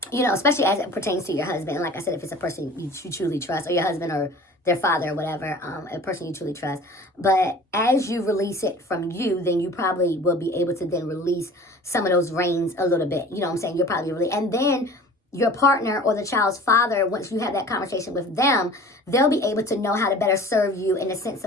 Especially as it pertains to your husband. And like I said, if it's a person you truly trust, or your husband or their father or whatever, a person you truly trust. But as you release it from you, then you probably will be able to then release some of those reins a little bit. You know what I'm saying? You're probably really, and then your partner or the child's father, once you have that conversation with them, they'll be able to know how to better serve you, in the sense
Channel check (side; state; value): both; normal; correlation 0.44